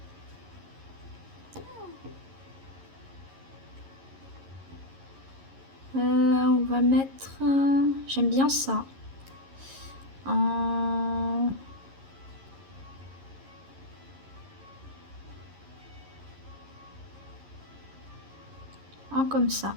On va mettre... j'aime bien ça. En comme ça.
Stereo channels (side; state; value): left; late; 11 ms